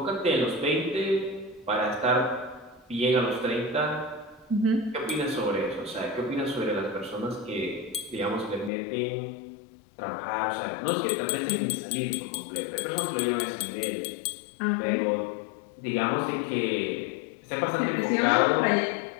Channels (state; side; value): drops out; right; at 8.7 s